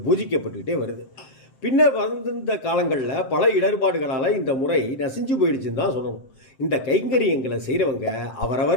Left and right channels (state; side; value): late; right; 7.7 ms